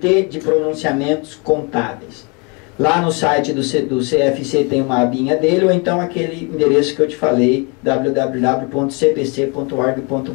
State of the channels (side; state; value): right; quieter; 31.8 dB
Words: de Pronunciamentos Contábeis. Lá no site do CFC tem uma abinha dele, ou então aquele endereço que eu te falei, www.cpc.org.br.